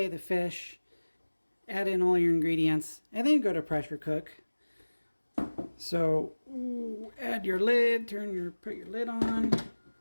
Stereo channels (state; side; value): inverted; both; correlation -1.00